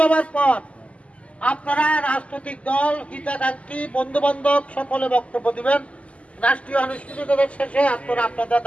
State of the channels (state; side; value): late; right; 0.063 ms